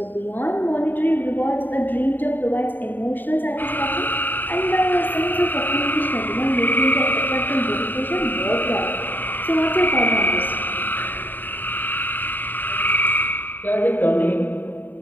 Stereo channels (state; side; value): late; right; 0.091 ms